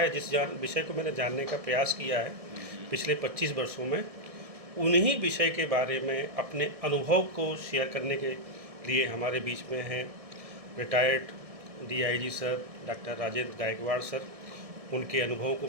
जिस विषय को मैंने जानने का प्रयास किया है पिछले 25 वर्षों में, उन्हीं विषय के बारे में अपने अनुभव को शेयर करने के लिए हमारे बीच में हैं retired DIG sir doctor Rajendra Gaikwad sir. उनके अनुभव को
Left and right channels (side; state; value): left; late; 1.7 ms